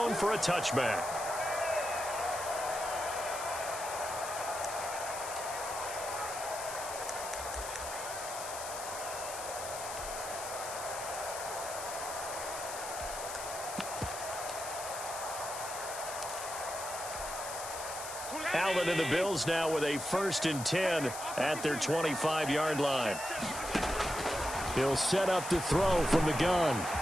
for a touchback. Allen and the Bills now with a 1st and 10 at their 25-yard line. He'll set up to throw from the gun.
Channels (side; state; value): left; noise; hiss, 8 dB below the sound